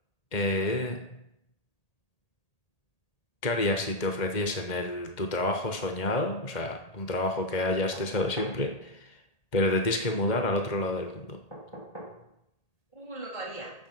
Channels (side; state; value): right; late; 1.8 ms